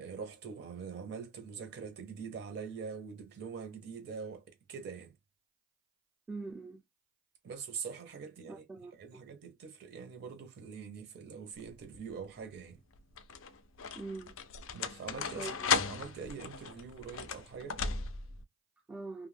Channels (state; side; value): normal; both; correlation 0.08